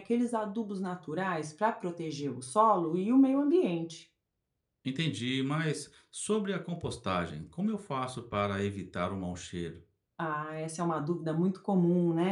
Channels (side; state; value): both; identical; correlation 1.00